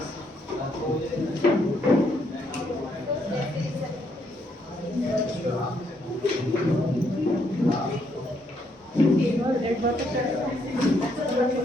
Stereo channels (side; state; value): both; normal; correlation 0.73